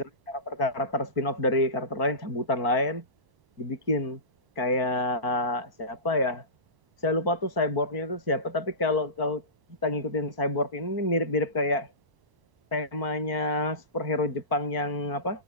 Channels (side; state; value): left; late; 1.0 ms